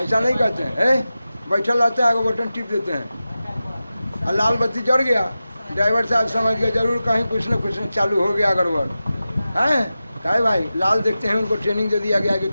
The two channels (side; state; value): both; inverted; correlation -0.94